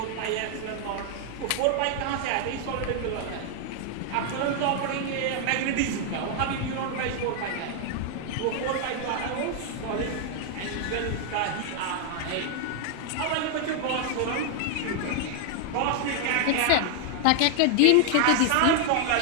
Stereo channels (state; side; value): different; both; correlation 0.00